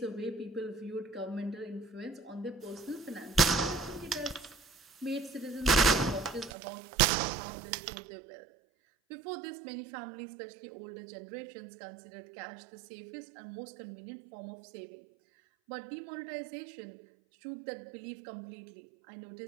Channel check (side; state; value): left; drops out; at 6.5 s